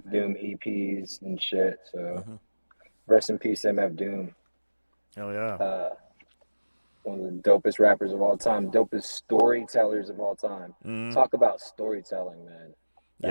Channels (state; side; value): inverted; both; correlation -1.00